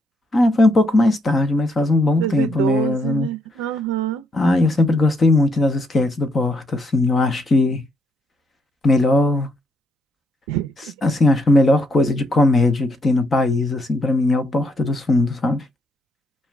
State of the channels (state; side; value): normal; both; correlation 0.74